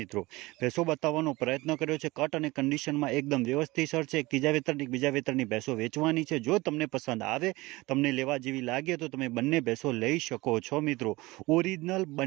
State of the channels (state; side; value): quieter; left; 21.3 dB